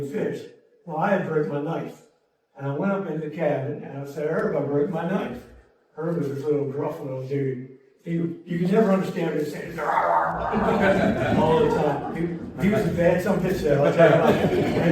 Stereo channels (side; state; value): both; identical; correlation 1.00